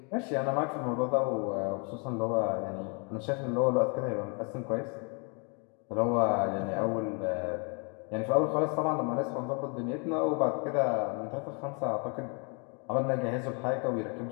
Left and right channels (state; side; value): quieter; right; 36.1 dB